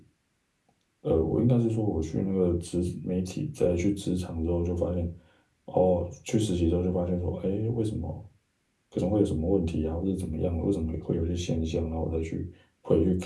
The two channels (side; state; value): both; identical; correlation 1.00